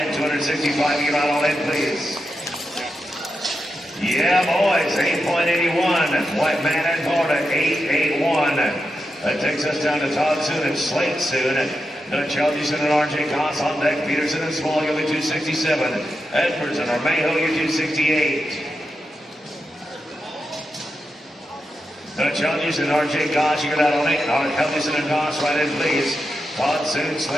265. You right on in, please. Yeah, boys, 8.81. White Man and Barta, 881. That takes us down to Todd Soon and Slate Soon. Dutch Helgison and RJ Goss on deck. Peterson and Small, you'll be 267. Edwards and Armejo, you're 268. Dutch Helgison and RJ Goss, you got out on 8. Helgison and Goss, right in, please. Todd Soon,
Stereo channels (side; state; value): both; normal; correlation 0.87